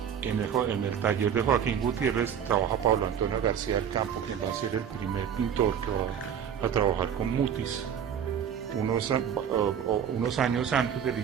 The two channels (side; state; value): left; quieter; 8.4 dB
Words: en el taller de Joaquín Gutiérrez trabaja Pablo Antonio García del Campo, quien va a ser el primer pintor que va a trabajar con Mutis unos años antes del